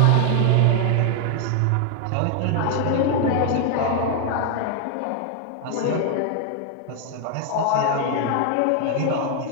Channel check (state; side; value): different; both; correlation 0.00